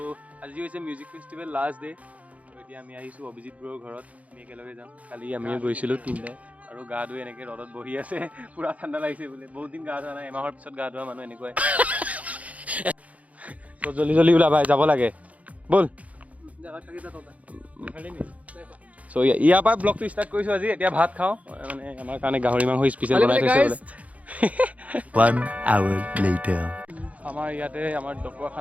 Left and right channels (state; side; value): late; left; 0.069 ms